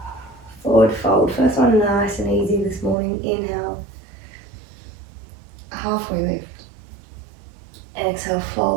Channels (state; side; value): drops out; left; at 3.0 s